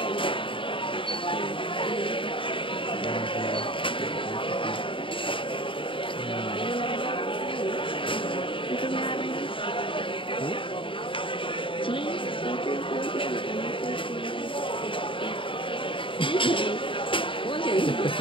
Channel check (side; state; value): right; late; 0.25 ms